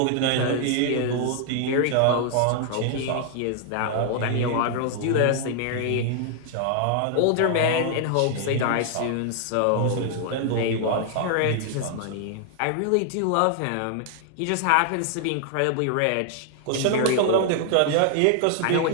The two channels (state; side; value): different; both; correlation 0.00